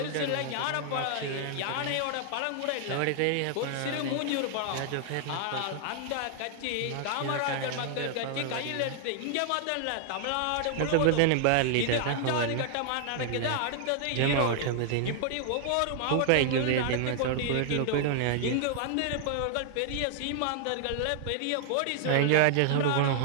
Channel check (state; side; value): different; both; correlation 0.00